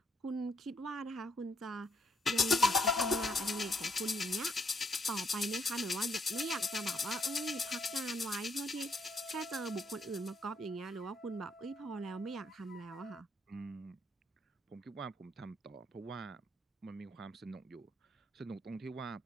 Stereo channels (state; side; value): normal; both; correlation 0.72